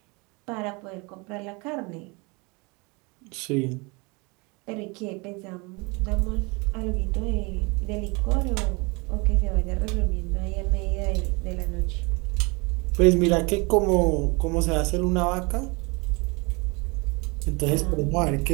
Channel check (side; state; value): left; quieter; 28.3 dB